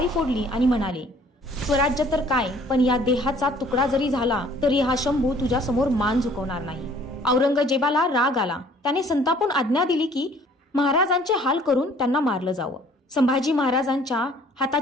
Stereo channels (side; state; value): both; normal; correlation 0.56